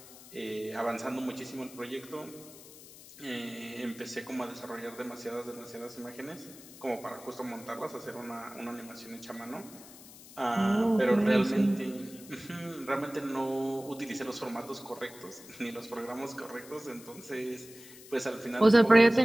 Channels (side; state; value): left; noise; hiss, 18 dB below the sound